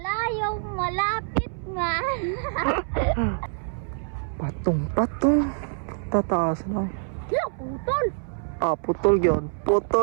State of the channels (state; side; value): silent; left; 61 dB below the other